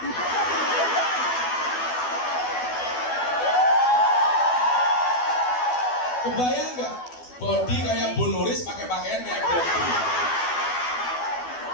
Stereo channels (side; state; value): right; late; 12 ms